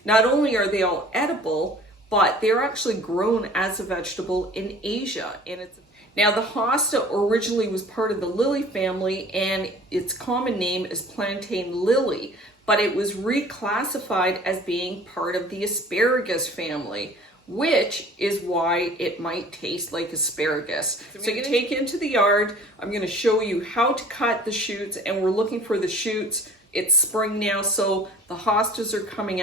Not only are they all edible, but they're actually grown as a vegetable in Asia. Now, the hosta originally was part of the lily family, and its common name is plantain lily, but it was reclassified as being part of the asparagus family, which is why it might taste like asparagus. So you take it into the yard. I'm going to show you how to cut the shoots, and we're looking for the shoots. It's spring now, so the hostas are coming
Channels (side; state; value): both; normal; correlation 0.48